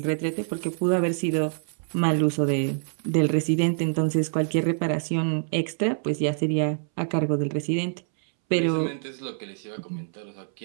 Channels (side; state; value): left; silent; 61 dB below the other